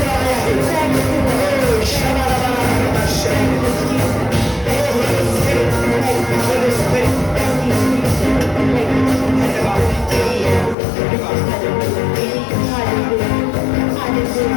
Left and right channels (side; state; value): right; drops out; at 10.8 s